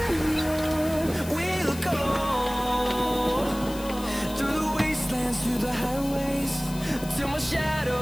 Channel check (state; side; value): noise; left; hiss, 15 dB below the sound